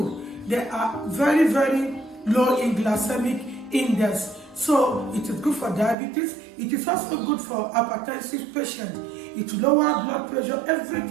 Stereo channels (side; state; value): left; drops out; at 6.0 s